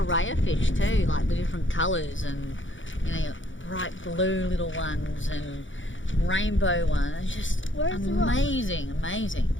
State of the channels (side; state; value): right; late; 0.56 ms